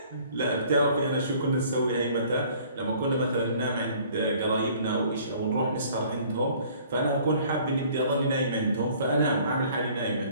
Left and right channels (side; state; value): both; inverted; correlation -0.55